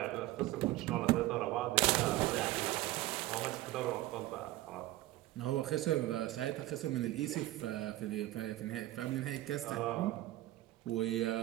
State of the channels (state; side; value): quieter; left; 16.4 dB